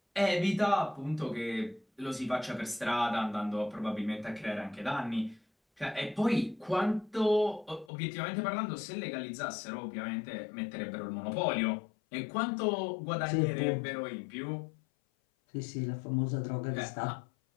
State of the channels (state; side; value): drops out; right; at 7.9 s